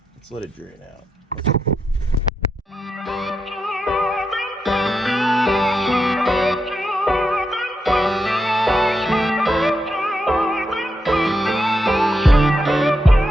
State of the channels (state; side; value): normal; both; correlation 0.84